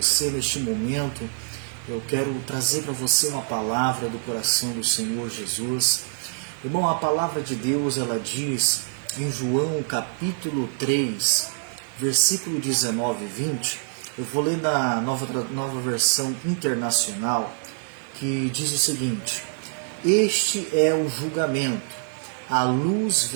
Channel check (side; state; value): left; silent; 62 dB below the other